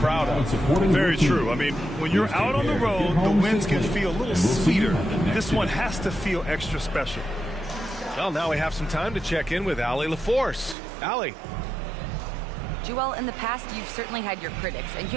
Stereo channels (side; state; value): left; drops out; at 10.8 s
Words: of. Very true. I mean, when you're out on the road, the wins can feel a little sweeter. This one has to feel extra special. Well, now we have some time to check in with Allie LaForce. Allie. Joel, in the past, you've certainly had your critics, and you